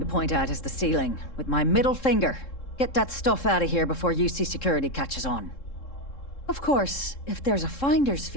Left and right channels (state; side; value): late; right; 3.7 ms